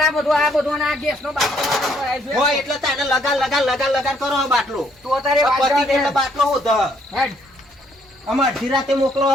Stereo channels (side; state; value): both; normal; correlation 0.68